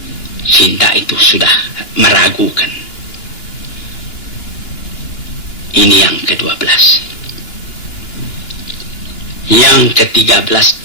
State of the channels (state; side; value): late; right; 2.9 ms